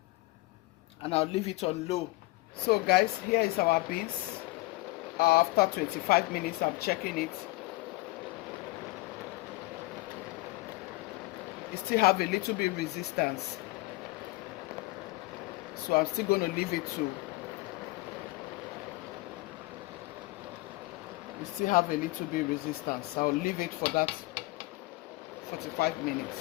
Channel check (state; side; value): quieter; right; 20.9 dB